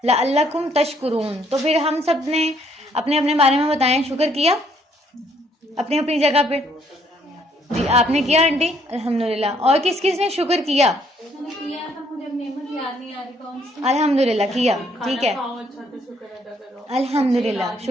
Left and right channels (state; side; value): normal; both; correlation 0.67